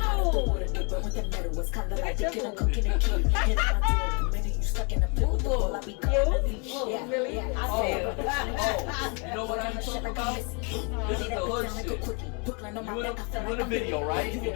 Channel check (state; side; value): quieter; right; 34.5 dB